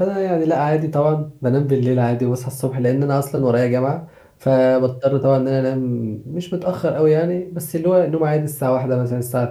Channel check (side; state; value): both; identical; correlation 1.00